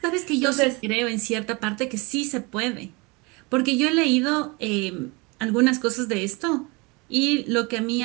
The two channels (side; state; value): left; quieter; 27.0 dB